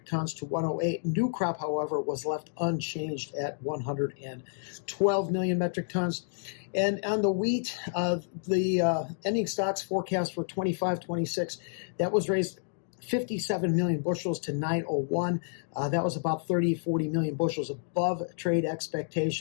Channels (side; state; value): right; silent; digital silence